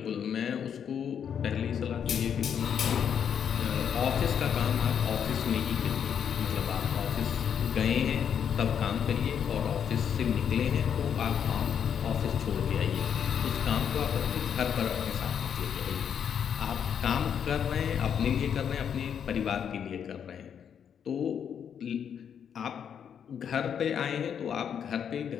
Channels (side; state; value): right; quieter; 8.1 dB